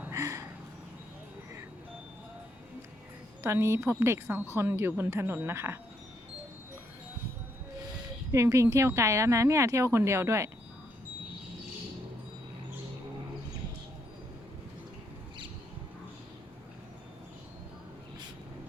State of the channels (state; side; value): normal; both; correlation 0.75